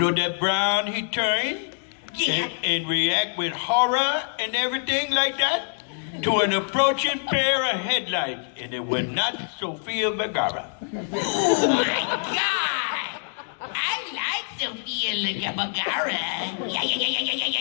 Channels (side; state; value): right; silent; digital silence